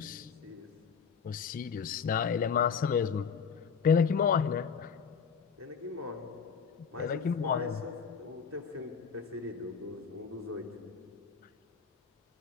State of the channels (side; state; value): right; quieter; 6.3 dB